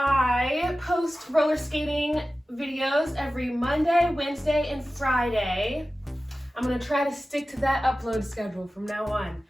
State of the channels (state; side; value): normal; both; correlation 0.95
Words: post roller skating videos every Monday, Wednesday, and Friday. I'm going to try to stick to that upload schedule from now on.